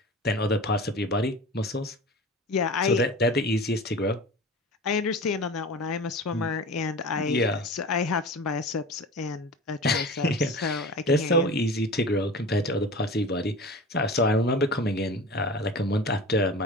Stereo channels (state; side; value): normal; both; correlation 0.35